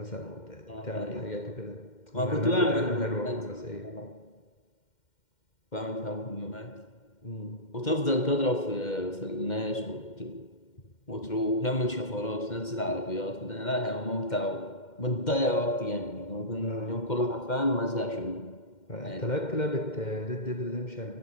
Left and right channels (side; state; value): right; late; 2.1 ms